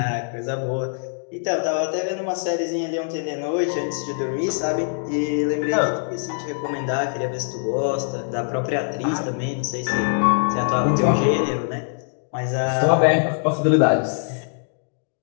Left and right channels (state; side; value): silent; right; digital silence